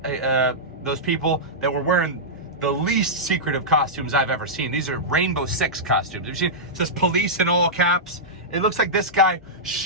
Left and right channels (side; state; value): both; normal; correlation -0.12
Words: those people that were wearing the least secretive costumes I've ever seen. These are Rainbow Six costumes. Have you seen? It says police in all caps. It looks like this guy